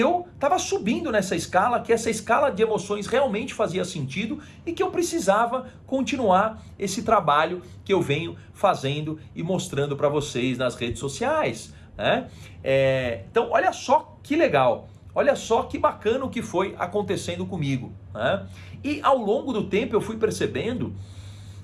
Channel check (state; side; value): identical; both; correlation 1.00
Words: estava subindo nessa escala, que essa escala de emoções realmente fazia sentido e que eu precisava continuar esse trabalho que eu venho fazendo e mostrando para vocês nas redes sociais, né? Então, olha só que legal. Olha só que bacana o que foi acontecendo comigo, né? E ao longo do tempo eu fui percebendo,